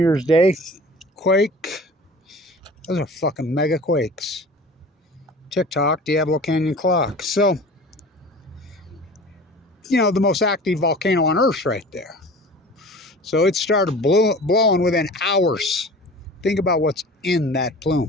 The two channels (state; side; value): normal; both; correlation 0.41